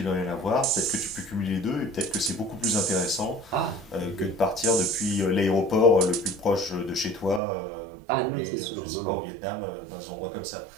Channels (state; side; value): drops out; left; at 7.4 s